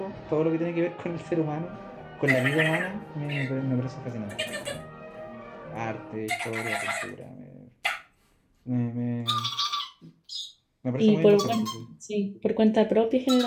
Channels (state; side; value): identical; both; correlation 1.00